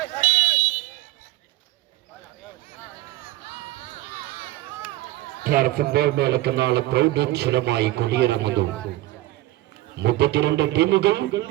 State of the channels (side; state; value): left; quieter; 16.9 dB